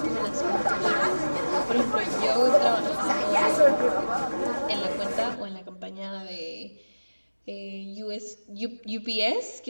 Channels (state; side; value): inverted; both; correlation -1.00